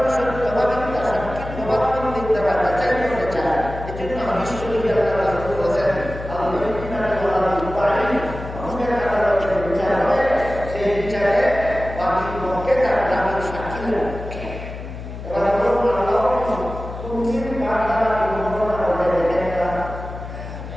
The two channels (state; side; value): noise; left; hum, 10 dB below the sound